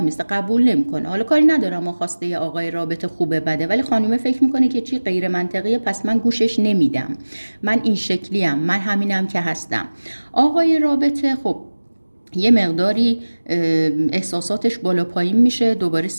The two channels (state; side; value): inverted; both; correlation -1.00